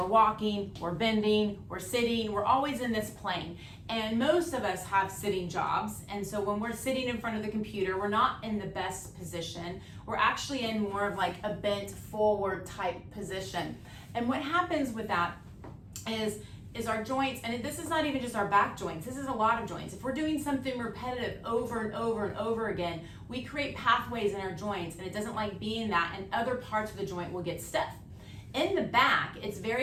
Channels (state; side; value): identical; both; correlation 1.00